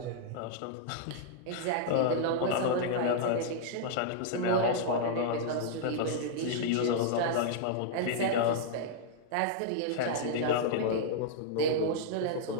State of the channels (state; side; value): different; both; correlation -0.01